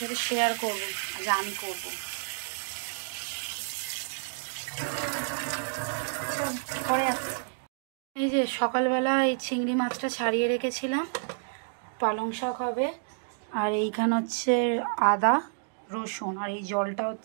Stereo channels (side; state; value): left; silent; digital silence